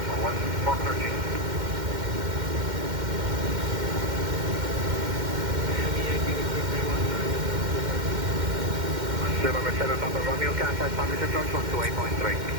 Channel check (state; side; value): late; left; 2.1 ms